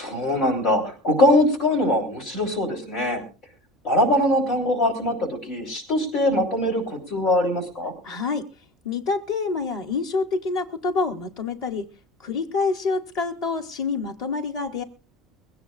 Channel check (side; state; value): both; normal; correlation 0.34